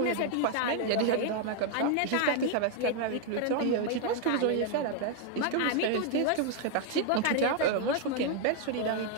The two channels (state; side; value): different; both; correlation 0.00